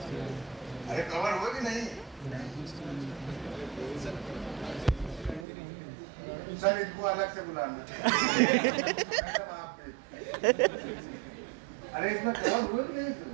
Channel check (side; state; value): left; drops out; at 5.5 s